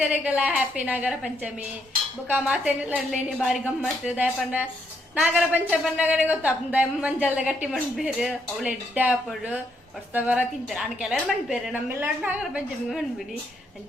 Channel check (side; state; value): both; normal; correlation 0.75